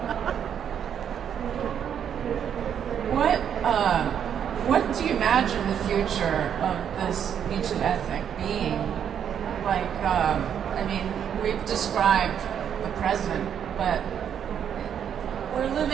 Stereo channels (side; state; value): left; quieter; 8.6 dB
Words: What do you imagine the future of this Me Too ethic being? Like, I mean, we've described the present, but we're